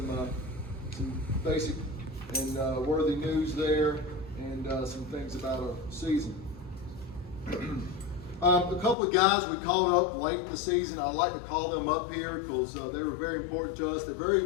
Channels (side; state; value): right; drops out; at 9.0 s